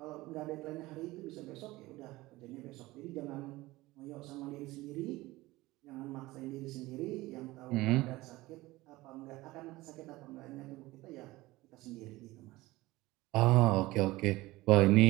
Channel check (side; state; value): left; quieter; 19.3 dB